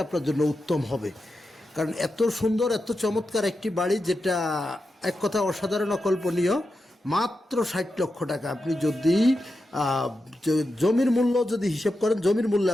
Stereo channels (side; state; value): both; normal; correlation 0.89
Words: আপনার জন্য উত্তম হবে। কারণ এত সুন্দর এত চমৎকার একটি বাড়ি, যেটা এক কথা অসাধারণ অকল্পনীয়। মাত্র 60 লক্ষ টাকা। আপনি যদি জমির মূল্য যদি হিসেব করেন, জমির মূল্যে